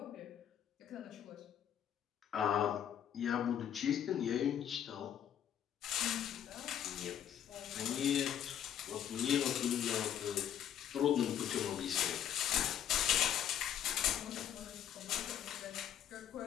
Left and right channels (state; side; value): quieter; right; 9.9 dB